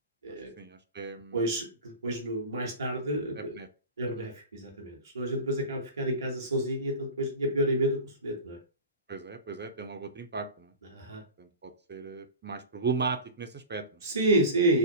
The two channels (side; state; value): both; inverted; correlation -0.30